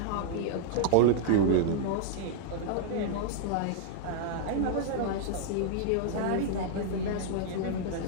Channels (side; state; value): both; different; correlation -0.01